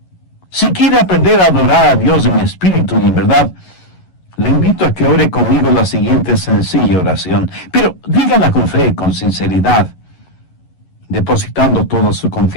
si quiere aprender a adorar a Dios en espíritu y en verdad, le invito a que ore conmigo la siguiente sencilla oración, pero dígala con fe, con sinceridad, depositando toda su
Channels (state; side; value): late; right; 11 ms